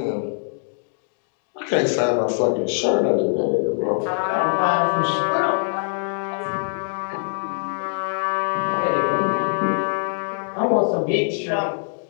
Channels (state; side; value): silent; right; digital silence